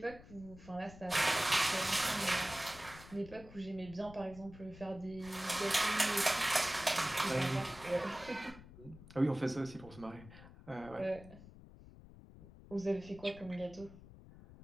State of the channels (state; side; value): noise; left; rumble, 18 dB below the sound